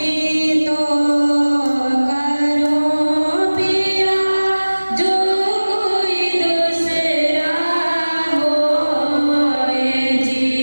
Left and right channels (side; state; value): both; inverted; correlation -1.00